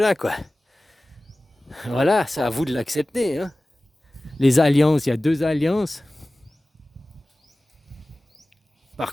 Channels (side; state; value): both; normal; correlation 0.97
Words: quoi. Voilà, c'est à vous de l'accepter, hein. Les alliances, il y a 2 alliances. Par